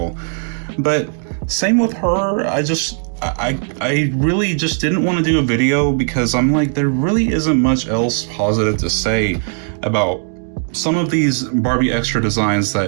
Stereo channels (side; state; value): left; silent; 61 dB below the other